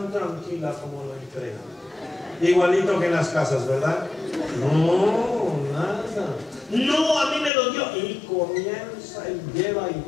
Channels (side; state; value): right; drops out; at 7.5 s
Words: tranquila como lo entrega. Igualito que en las casas, ¿verdad? No, nada. No, a mí me lo dio. Y comienza y lleva y